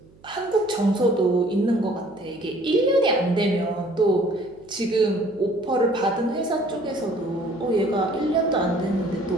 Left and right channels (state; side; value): noise; right; hum, 27 dB below the sound